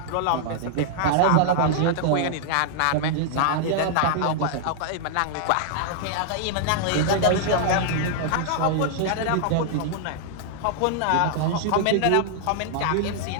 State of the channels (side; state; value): both; different; correlation -0.01